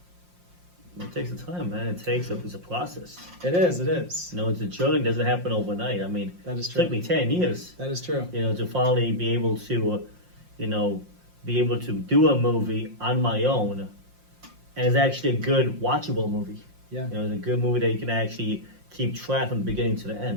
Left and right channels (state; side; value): late; left; 5.7 ms